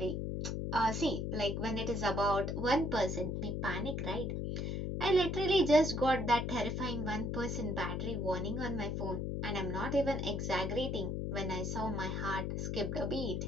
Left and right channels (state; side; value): noise; left; hum, 2 dB below the sound